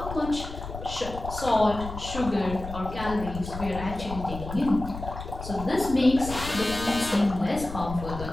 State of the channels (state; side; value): noise; left; rumble, 9 dB below the sound